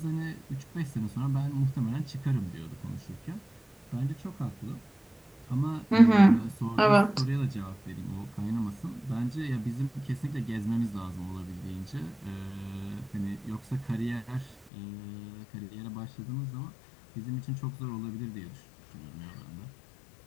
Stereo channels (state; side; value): drops out; right; at 14.6 s